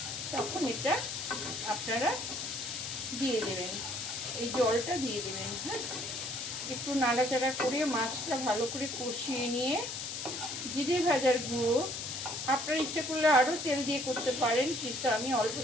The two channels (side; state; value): left; noise; hiss, 5 dB below the sound